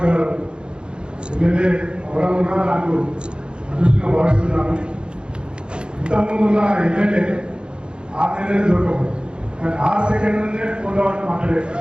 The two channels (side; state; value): left; late; 0.052 ms